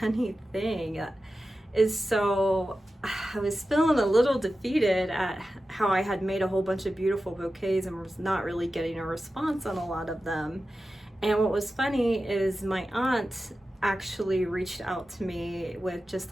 thing is, so I was feeling a little defeated at how I had made a whole bunch of beautiful bouquets and was not really getting a response on a lot of them. And what was funny is my aunt actually reached out to me with just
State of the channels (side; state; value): both; normal; correlation 0.93